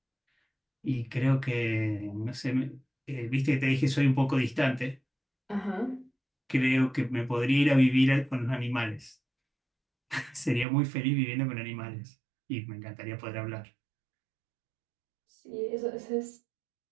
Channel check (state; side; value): drops out; left; at 10.7 s